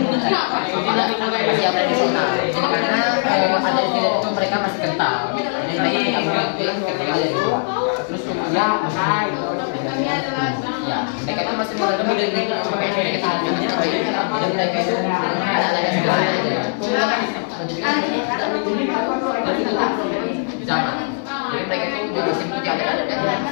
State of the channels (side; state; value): right; silent; 66 dB below the other